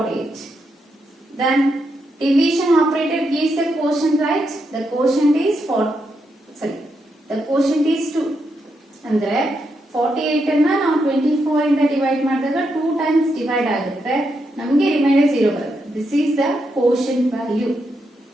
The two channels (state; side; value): normal; both; correlation 0.82